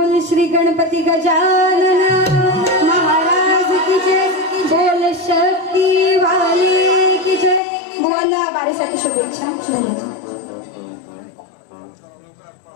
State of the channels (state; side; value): drops out; right; at 7.6 s